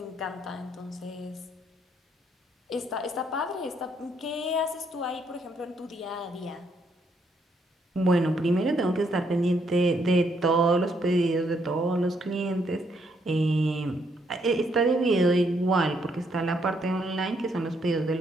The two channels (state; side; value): normal; both; correlation 0.73